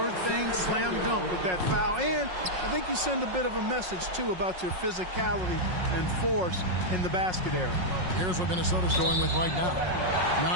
thing, slam dunk with that foul. And I think you send a bit of a message, too, about your physicality and force in the basket area. Here's what Minnesota's going with right now.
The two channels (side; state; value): left; late; 5.5 ms